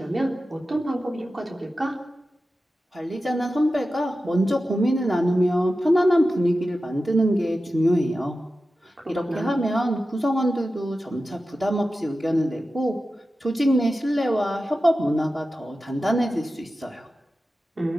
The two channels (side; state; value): both; normal; correlation 0.93